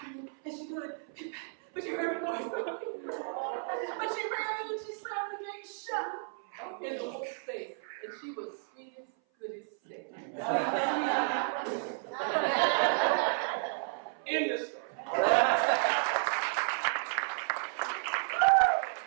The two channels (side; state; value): left; silent; 56 dB below the other